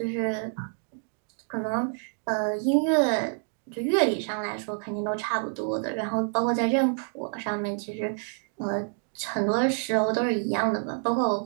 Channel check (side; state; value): left; silent; 56 dB below the other